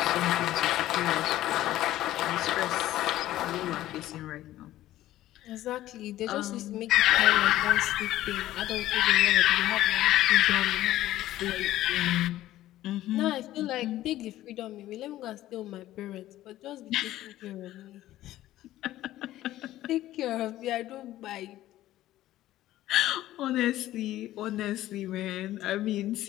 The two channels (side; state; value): right; quieter; 14.5 dB